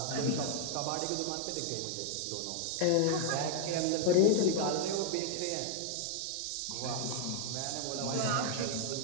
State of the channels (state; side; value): different; both; correlation 0.00